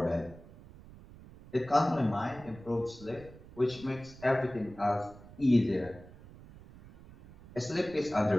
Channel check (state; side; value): noise; right; rumble, 19 dB below the sound